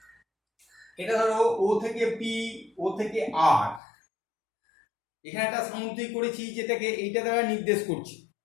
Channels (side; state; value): right; drops out; at 3.8 s